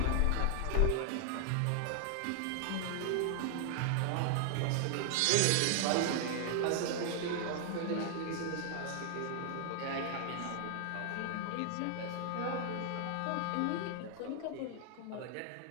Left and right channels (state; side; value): different; both; correlation 0.00